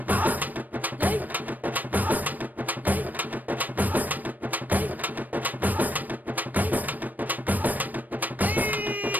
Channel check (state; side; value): late; left; 0.085 ms